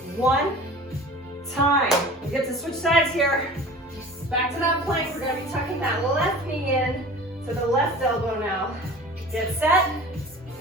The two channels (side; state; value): both; normal; correlation 0.40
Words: time. We get to switch sides here. Back to that plank, we're gonna be tucking that left knee in to the left elbow now. Get set,